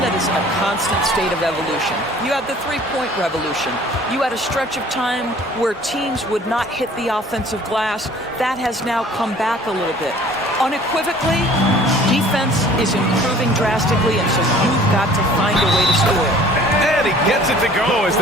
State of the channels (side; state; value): both; normal; correlation 0.51